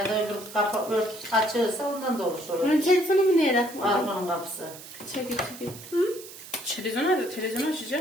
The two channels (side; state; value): right; noise; hiss, 15 dB below the sound